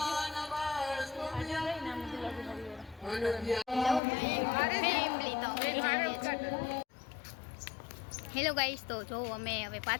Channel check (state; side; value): drops out; right; at 4.0 s